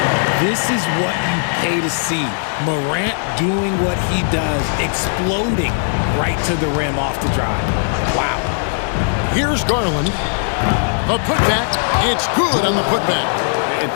This is what you pay to see. Morant doing what he does, exploding right to the rim off the drive. Wow. Here's Garland. A putback. It's good on the putback. And,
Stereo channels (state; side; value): silent; right; 56 dB below the other